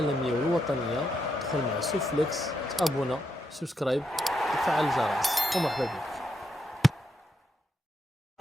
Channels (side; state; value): both; normal; correlation 0.81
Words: والوطنية، ادخل مع سوفليكس، تابونا، سبسكرايب، وفعل الجرس، ومرحبا بك.